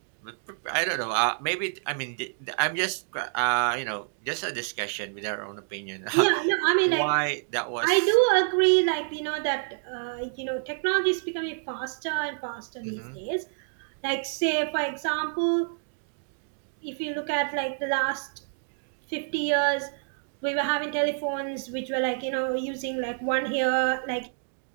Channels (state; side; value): silent; left; digital silence